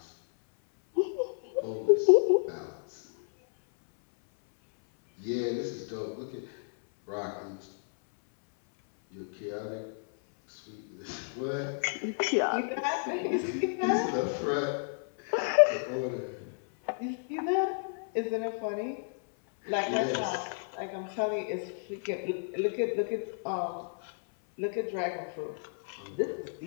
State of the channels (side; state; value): right; silent; 57 dB below the other